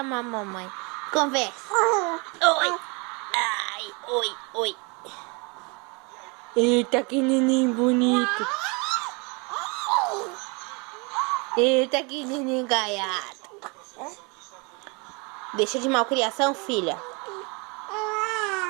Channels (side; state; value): left; quieter; 30.4 dB